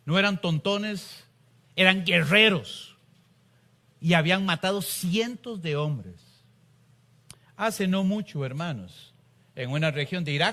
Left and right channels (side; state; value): both; identical; correlation 1.00